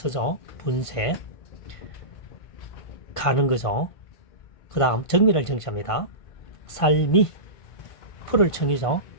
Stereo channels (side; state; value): right; late; 1.5 ms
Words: 분쇄, 가는 거죠. 그 다음 정밀할 정자입니다. 살미, 풀을 청이죠.